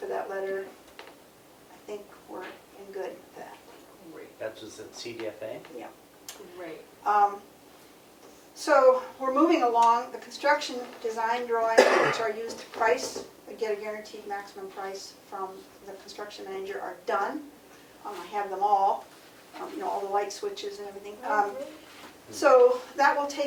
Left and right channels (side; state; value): both; identical; correlation 1.00